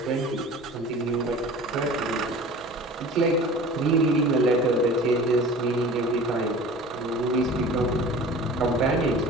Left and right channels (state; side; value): normal; both; correlation 0.41